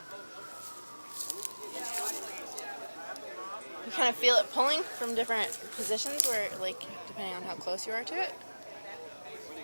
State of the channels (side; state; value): both; inverted; correlation -1.00